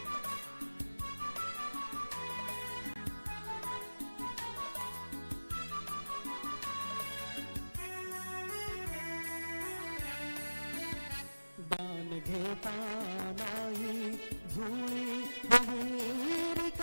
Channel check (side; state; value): both; inverted; correlation -1.00